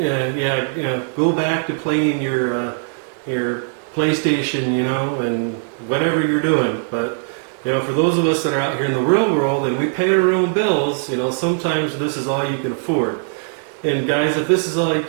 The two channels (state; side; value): silent; left; 66 dB below the other